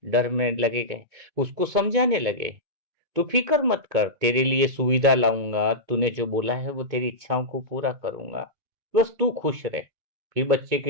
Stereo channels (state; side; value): late; left; 2.2 ms